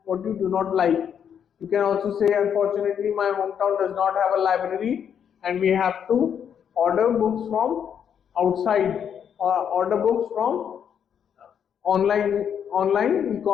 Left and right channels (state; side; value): quieter; right; 8.2 dB